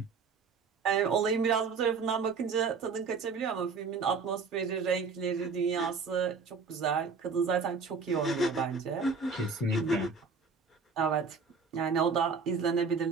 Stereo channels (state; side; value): quieter; left; 5.0 dB